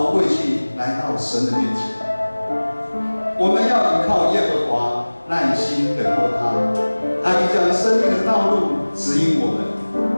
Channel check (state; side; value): inverted; both; correlation -1.00